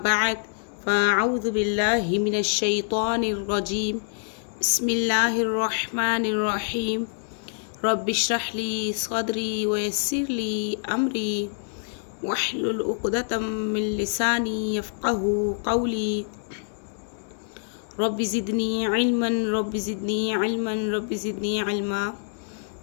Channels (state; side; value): silent; right; digital silence